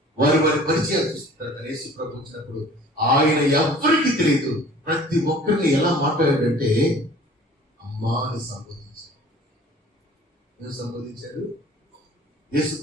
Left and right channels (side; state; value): both; normal; correlation 0.48